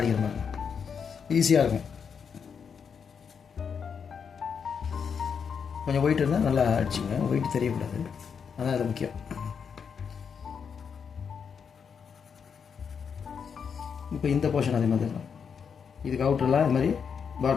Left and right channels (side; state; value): right; quieter; 6.6 dB